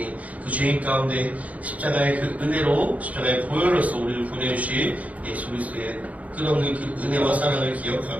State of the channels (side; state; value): left; late; 0.070 ms